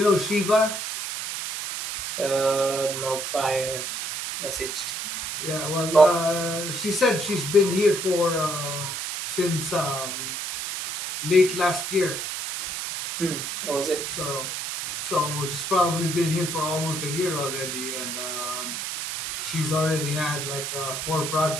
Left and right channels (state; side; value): noise; right; hiss, 4 dB below the sound